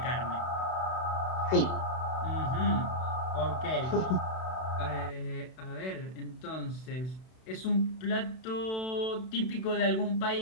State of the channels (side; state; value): right; late; 32 ms